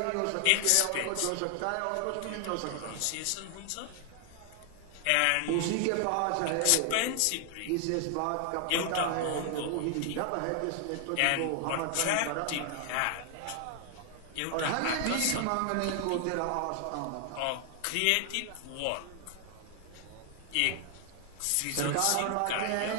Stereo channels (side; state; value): both; different; correlation 0.00